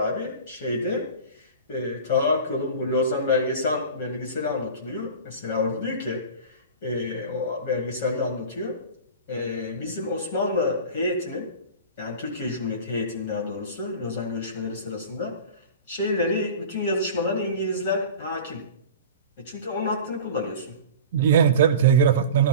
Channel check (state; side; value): inverted; both; correlation -0.35